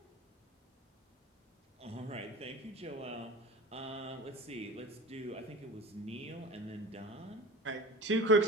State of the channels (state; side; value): normal; both; correlation 0.35